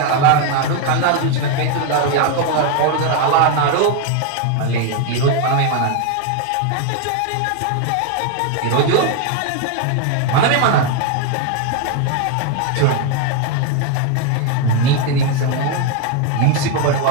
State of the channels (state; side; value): different; both; correlation 0.01